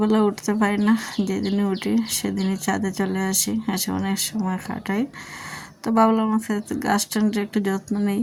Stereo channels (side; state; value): both; identical; correlation 1.00